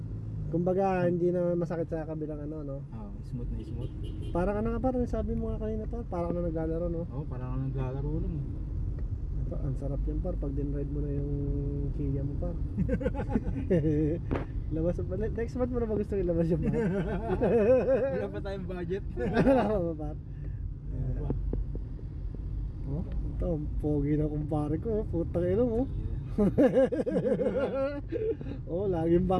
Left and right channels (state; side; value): identical; both; correlation 1.00